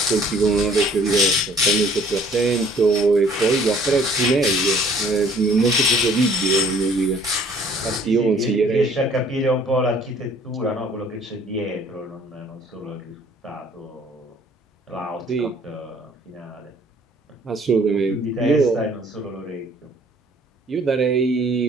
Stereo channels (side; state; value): both; normal; correlation 0.56